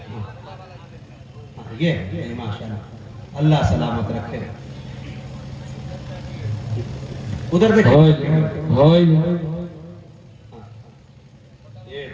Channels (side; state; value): both; identical; correlation 1.00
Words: یہ ماشاءاللہ، اللہ سلامت رکھے۔ ادھر دیکھیں،